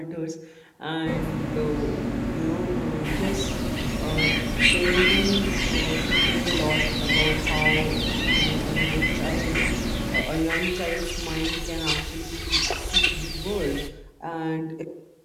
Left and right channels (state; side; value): identical; both; correlation 1.00